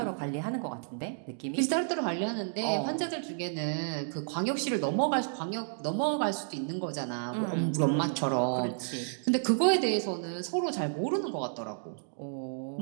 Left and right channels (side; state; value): left; silent; digital silence